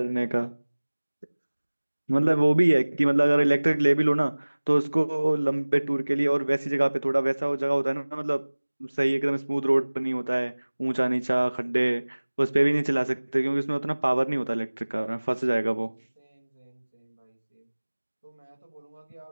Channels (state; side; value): inverted; both; correlation -1.00